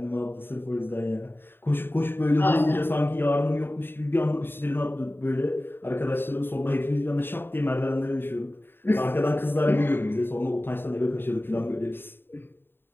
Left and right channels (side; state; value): right; late; 0.10 ms